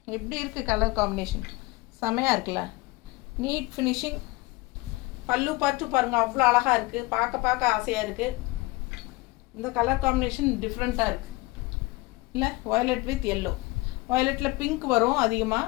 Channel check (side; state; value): right; quieter; 22.4 dB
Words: எப்படி இருக்குது கலர் காம்பினேஷன்? செமையாக இருக்குல்ல? NEET finishing. பல்லு பார்த்து பாருங்கள், அவ்வளோ அழகாக இருக்குது. பார்க்க ஆசையாக இருக்குது. இந்த கலர் காம்பினேஷன் டிஃப்ரெண்ட்டாக இருக்குது இல்லை? Violet with yellow. வயலட்டில் பிங்க் வரும்